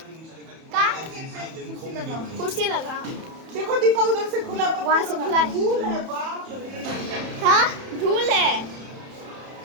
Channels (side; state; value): left; late; 31 ms